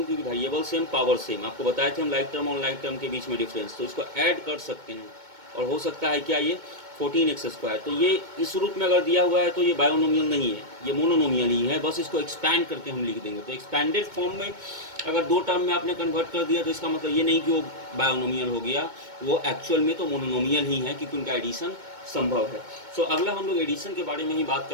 क्योंकि वेरिएबल सेम पावर सेम। आपको बताए थे हम लाइक टर्म और लाइक टर्म के बीच में डिफरेंस, तो इसको ऐड कर सकते हैं और हो सकता है क्या ये 14x²। तो ये इस रूप में अगर दिया हुआ है तो ये बायोनोमियल नहीं है, ये मोनोनोमियल ही है, बस इसको एक्सपैंड करके हम लिख देंगे। तो एक्सपैंडेड फॉर्म में अगर दो टर्म में आपने कन्वर्ट कर दिया तो इसका मतलब ये नहीं कि वो बायोनोमियल हो गया, वो एक्चुअल में तो मोनोनोमियल ही है क्योंकि उनका एडिशन संभव है। सो अगला हम लोग एडिशन के बारे में ही बात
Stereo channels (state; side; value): late; left; 2.2 ms